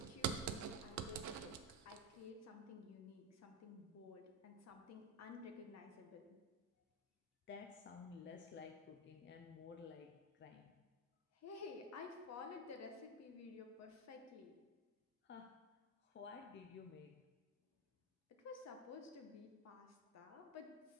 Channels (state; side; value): normal; both; correlation 0.11